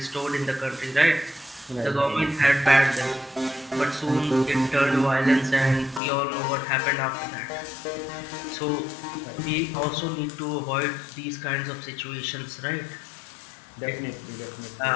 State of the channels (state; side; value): drops out; right; at 6.0 s